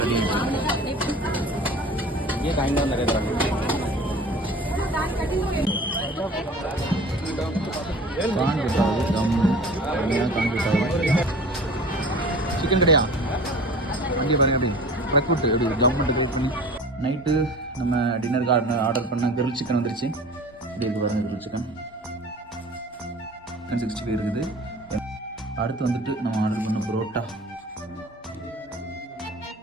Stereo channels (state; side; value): normal; both; correlation 0.41